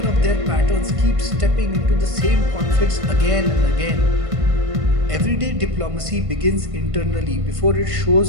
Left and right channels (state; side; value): late; left; 1.5 ms